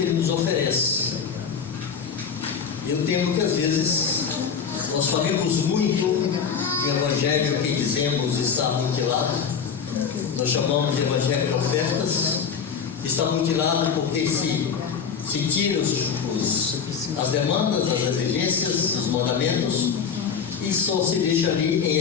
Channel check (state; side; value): quieter; right; 6.7 dB